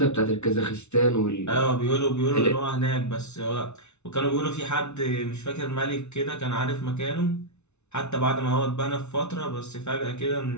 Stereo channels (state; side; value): late; right; 0.81 ms